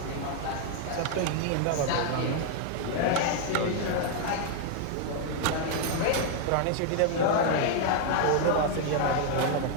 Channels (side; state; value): both; different; correlation 0.00